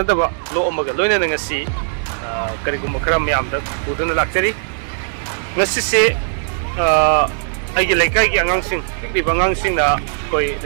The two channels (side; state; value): left; silent; digital silence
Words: daba lo amaga loina ngasi kari gum khara myam da buduna lakchari ngasi se aigi Leikaigi Angangsing pikri Angangsing na koi